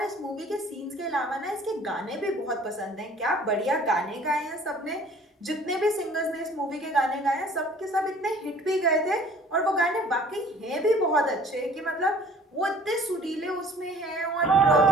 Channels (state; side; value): normal; both; correlation 0.51